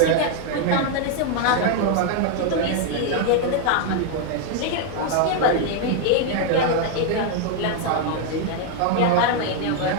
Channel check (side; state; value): both; different; correlation 0.00